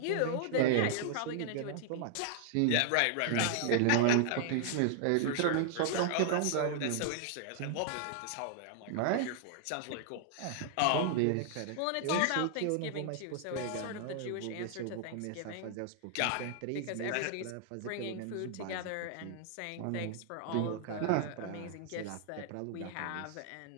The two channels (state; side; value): different; both; correlation 0.00